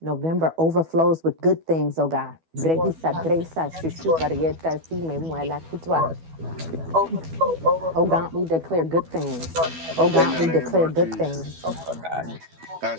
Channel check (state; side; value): late; left; 12 ms